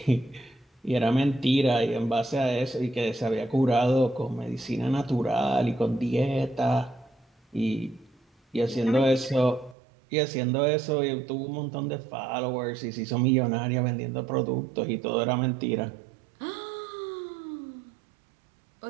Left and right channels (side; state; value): left; drops out; at 9.8 s